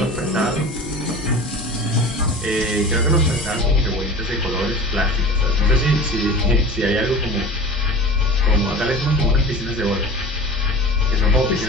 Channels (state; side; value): normal; both; correlation 0.37